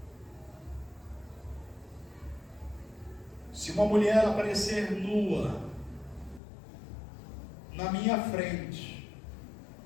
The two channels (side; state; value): right; drops out; at 6.4 s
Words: se uma mulher aparecer nua na minha frente,